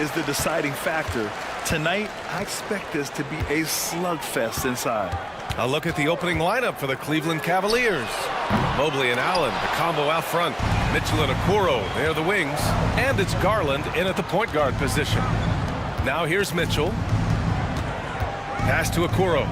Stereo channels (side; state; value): both; identical; correlation 1.00